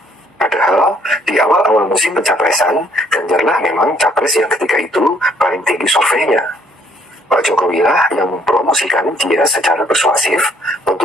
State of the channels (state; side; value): normal; both; correlation 0.63